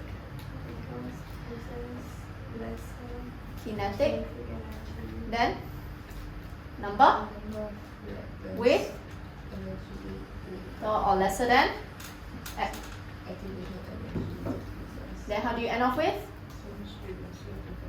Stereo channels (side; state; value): both; identical; correlation 1.00